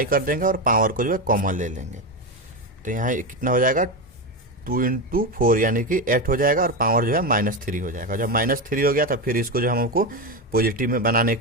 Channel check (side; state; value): both; normal; correlation 0.14